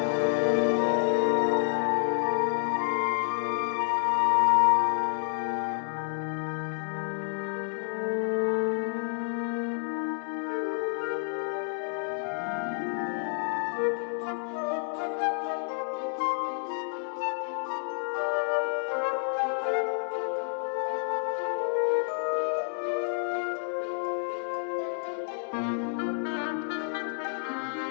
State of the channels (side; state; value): right; silent; 56 dB below the other